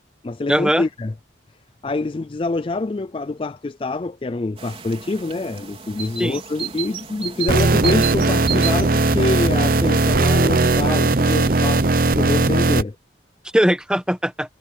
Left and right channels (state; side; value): normal; both; correlation 0.60